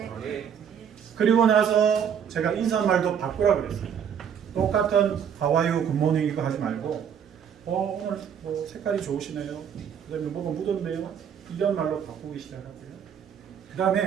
그리고 나서 제가 인사말도 바꾸라 그랬어요. 똑같은 하와이어 굿모닝 이거 하지 말고 오늘 뭐 색깔이 좋으시네요. 그 다음에 뭐가 묻었네요. 이런 말로 바꾸기 시작하고요. 그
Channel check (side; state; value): left; quieter; 8.0 dB